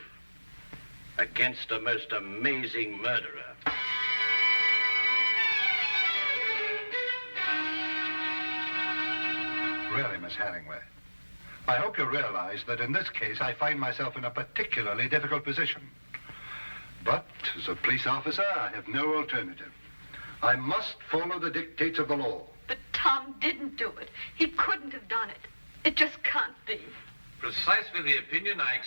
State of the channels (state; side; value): inverted; both; correlation -1.00